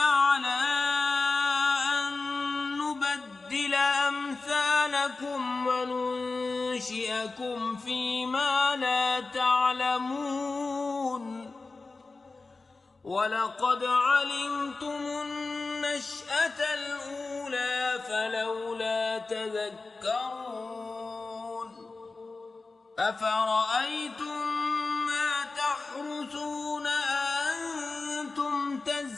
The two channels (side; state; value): right; quieter; 3.7 dB